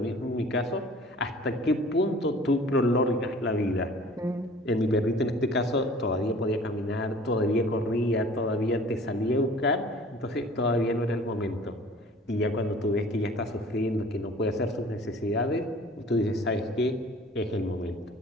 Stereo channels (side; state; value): both; normal; correlation 0.48